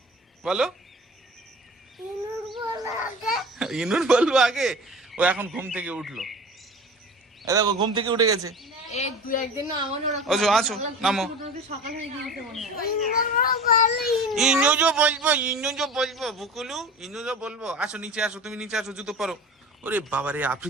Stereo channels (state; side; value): normal; both; correlation 0.35